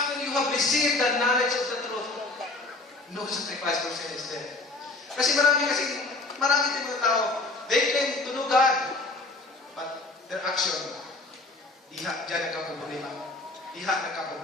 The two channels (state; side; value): quieter; right; 3.1 dB